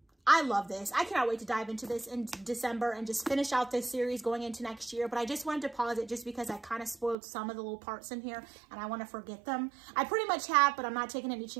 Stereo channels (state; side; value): drops out; left; at 7.2 s